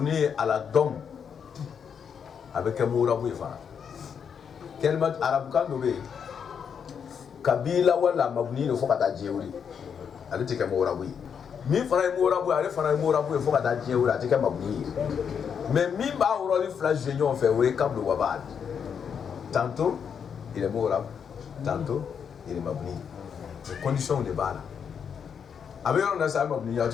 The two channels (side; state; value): right; quieter; 7.2 dB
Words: ala dom avec murabu fa kalimat arab kan do be kabila wala mabni no fokata jeuri ale tike murabu mi fara murabu ale fara murabu fokata jeuri atike mabni mais mi ba uroli flash union fait we kablu wa ba'd tantôt il est murabu tantôt il est mabni les conditions de bala avec on a ça mabni ya